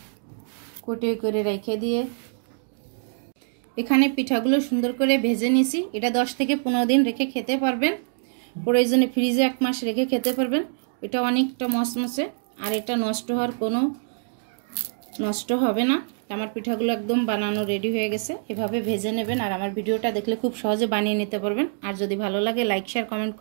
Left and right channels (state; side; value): silent; left; digital silence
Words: কুটে করে রেখে দিয়ে এখানে পিঠাগুলো সুন্দর করে ভেজে নিয়েছি। এটা 10 থেকে 15 দিন রেখে খেতে পারবেন। প্রয়োজনে ফ্রিজে 1 মাস রেখে খেতে পারবেন। এটা অনেকটা মসমসে। আর এটা নষ্ট হবে না। আমার পিঠাগুলো একদম বানানো রেডি হয়ে গেছে। এভাবে ভেজে নেবেন। আর আমার ভিডিওটা দেখলে খুব সহজে বানিয়ে নিতে পারবেন। আর যদি ভালো লাগে লাইক শেয়ার কমেন্ট